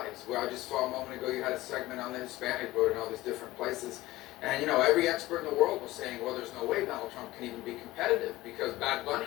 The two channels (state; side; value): quieter; right; 17.4 dB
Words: Well, I just saw a moment ago you had a segment on the Hispanic vote in all these different places. And every expert in the world was saying, well, there's no way Donald Trump can even be competitive because Bad